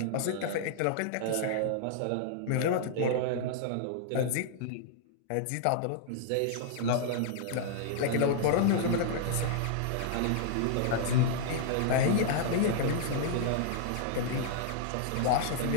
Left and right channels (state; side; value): different; both; correlation -0.01